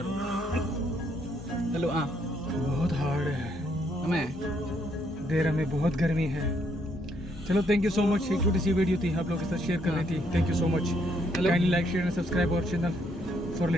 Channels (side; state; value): both; normal; correlation 0.72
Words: हेलो हाँ बहुत हार्ड है। हमें देर में बहुत गर्मी है। चलो थैंक यू सो मच। एक छोटी सी वीडियो थी, आप लोगों के साथ शेयर करनी थी। Thank you so much. Hello. Kindly like, share and subscribe our channel for